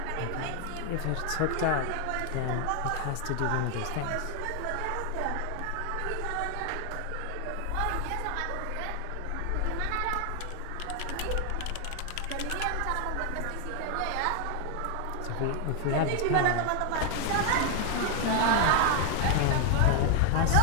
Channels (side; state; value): both; different; correlation 0.00